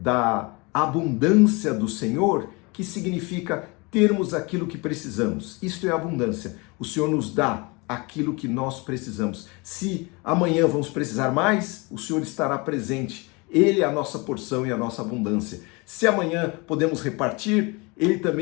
abundância do Senhor, que significa termos aquilo que precisamos. Isto é abundância. O Senhor nos dá aquilo que nós precisamos. Se amanhã vamos precisar mais, o Senhor estará presente. Ele é a nossa porção e a nossa abundância. Se amanhã podemos repartir, Ele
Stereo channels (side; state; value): right; quieter; 27.6 dB